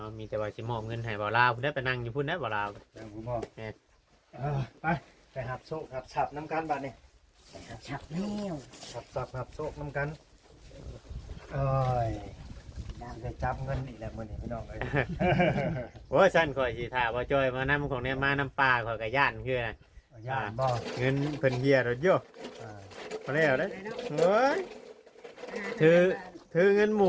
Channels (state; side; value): identical; both; correlation 1.00